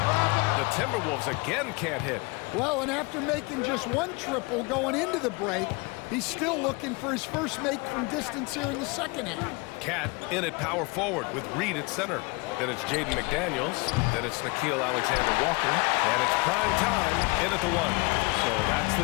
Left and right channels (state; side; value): quieter; right; 27.4 dB